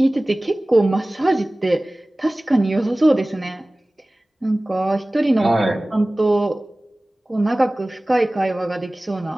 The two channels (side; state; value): both; normal; correlation 0.98